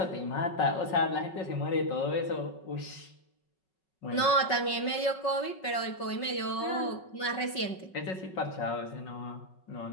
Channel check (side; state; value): right; late; 5.3 ms